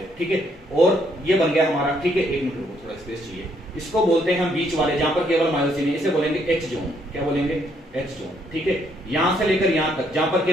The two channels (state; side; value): normal; both; correlation 0.71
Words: ठीक है। और ये बन गया हमारा, ठीक है, 1 मिनट रुको, थोड़ा स्पेस चाहिए। इसको बोलते हैं हम बीच वाले, जहां पर केवल मायोसिन है, इसे बोलेंगे एच जोन। क्या बोलेंगे, एच जोन, ठीक है। यहां से लेकर यहां तक जहां पर